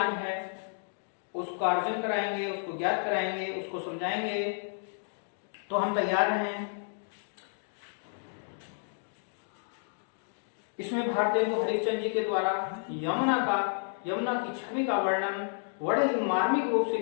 है उसका अर्जन कराएंगे, उसको ज्ञात कराएंगे, उसको समझाएंगे। तो हम तैयार हैं। इसमें भारतेंदु हरिश्चंद्र जी के द्वारा यमुना की छवि का वर्णन बड़े ही मार्मिक रूप से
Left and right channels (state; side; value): silent; right; digital silence